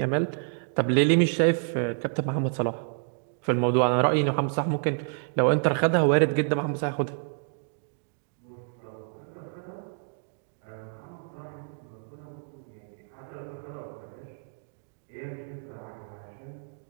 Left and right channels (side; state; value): left; silent; 59 dB below the other